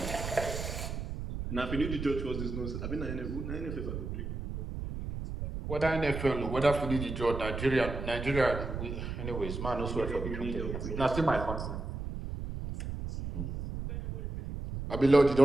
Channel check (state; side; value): noise; right; rumble, 5 dB below the sound